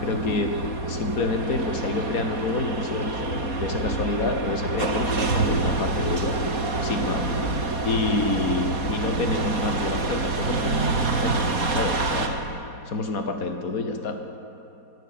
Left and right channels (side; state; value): right; late; 4.2 ms